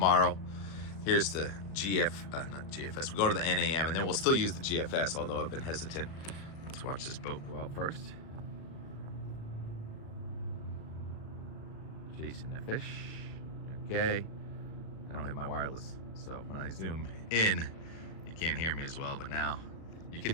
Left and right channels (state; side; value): late; right; 37 ms